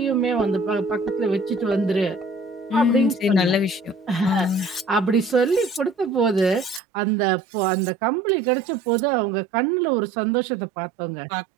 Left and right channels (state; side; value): drops out; left; at 6.8 s